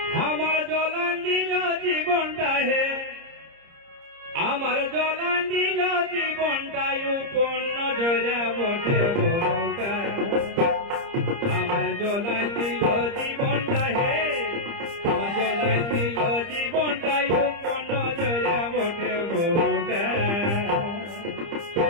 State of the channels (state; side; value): late; left; 30 ms